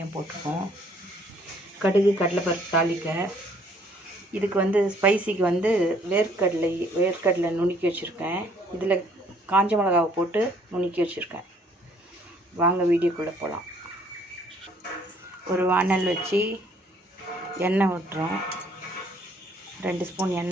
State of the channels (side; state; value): both; normal; correlation 0.62